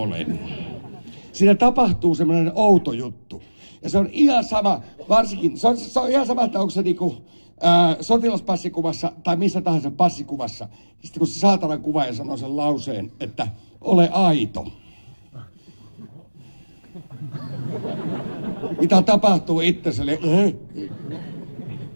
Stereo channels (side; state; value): both; inverted; correlation -1.00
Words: Siinä tapahtuu semmoinen outo juttu. Ja se on ihan sama, varsinkin, se on ihan sama, että onko se niinku sotilaspassikuvassa tai missä tahansa passikuvassa. Sitten kun se saatanan kuvaaja sanoo sen lauseen, että ole aito. Mitä tapahtuu itseselle?